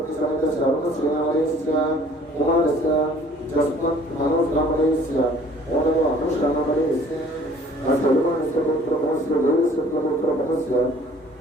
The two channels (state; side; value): normal; both; correlation 0.54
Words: समेतस्य अरुणश्रीनामलयस्य कुमारस्य जस्मत् मनोजनामलयस्य ओनव अनुषानामलयस्य असेल्वानस्य पुत्रमोस्य देवस्य पुत्रमोस्य